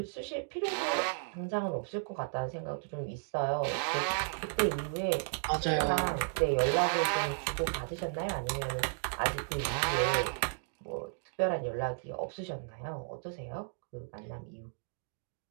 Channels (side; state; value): left; silent; digital silence